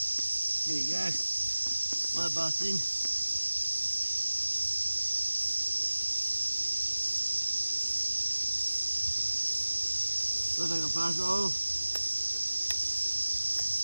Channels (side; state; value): both; inverted; correlation -1.00